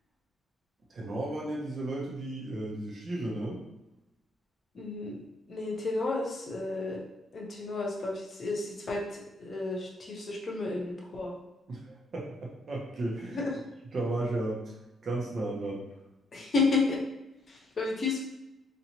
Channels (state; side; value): normal; both; correlation 0.71